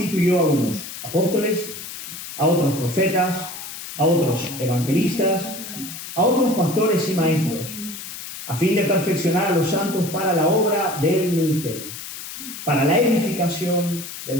a unos apóstoles, a otros profetas, a otros evangelistas, a otros pastores y maestros, a fin de perfeccionar a los santos para la obra del ministerio, para la edificación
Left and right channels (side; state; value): left; noise; hiss, 10 dB below the sound